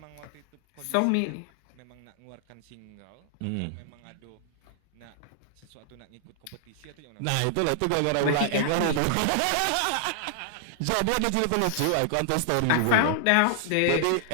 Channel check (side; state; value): both; different; correlation 0.00